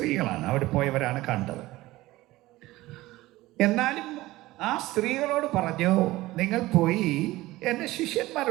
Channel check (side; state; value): left; quieter; 18.2 dB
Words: അവിടെ പോയവരാണ് കണ്ടത്. എന്നാലും ആ സ്ത്രീകളോട് പറഞ്ഞു, നിങ്ങൾ പോയി എൻ്റെ